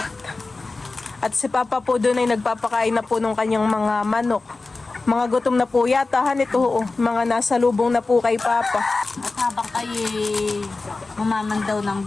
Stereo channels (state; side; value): quieter; right; 3.6 dB